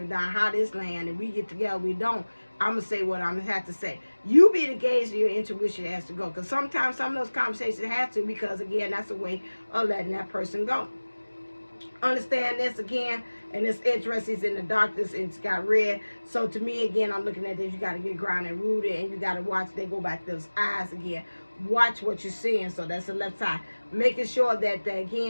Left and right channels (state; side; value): inverted; both; correlation -1.00